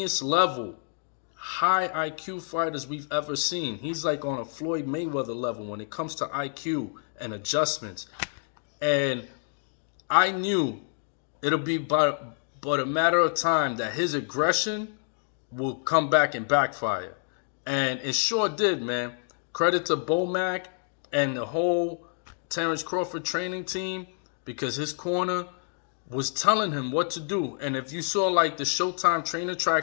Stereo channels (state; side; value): silent; right; 59 dB below the other